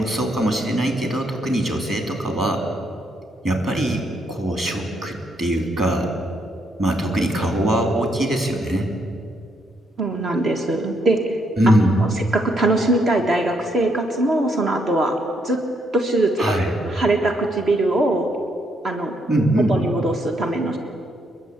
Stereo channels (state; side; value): normal; both; correlation 0.75